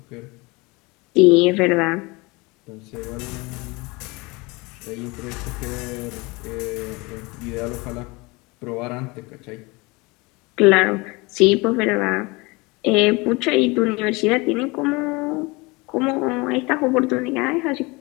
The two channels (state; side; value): quieter; right; 25.2 dB